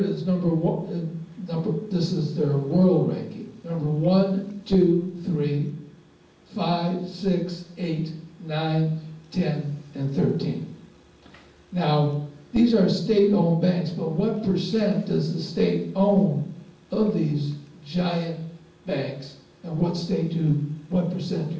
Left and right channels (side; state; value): both; identical; correlation 1.00